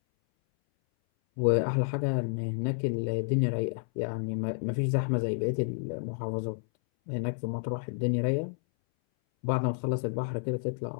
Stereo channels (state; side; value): silent; right; 58 dB below the other